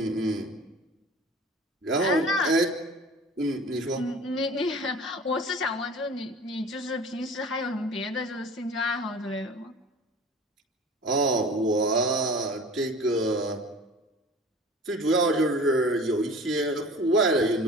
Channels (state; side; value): normal; both; correlation 0.42